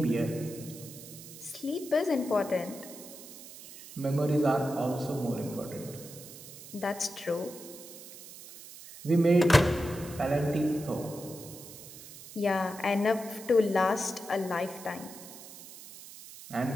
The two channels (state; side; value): noise; right; hiss, 15 dB below the sound